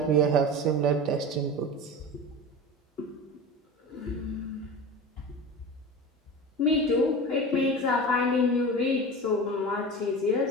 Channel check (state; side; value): normal; both; correlation 0.30